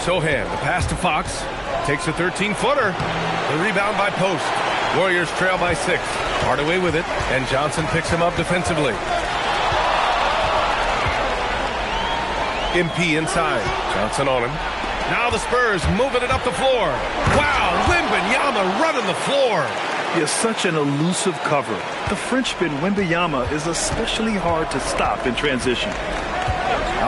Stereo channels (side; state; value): both; identical; correlation 1.00